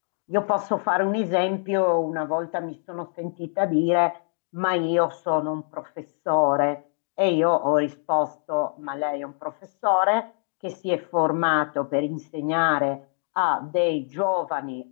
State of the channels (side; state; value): right; silent; 62 dB below the other